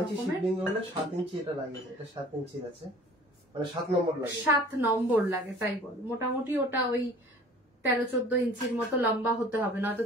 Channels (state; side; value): normal; both; correlation 0.48